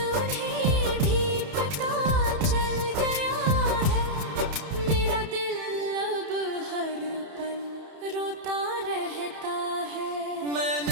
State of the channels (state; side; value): late; left; 31 ms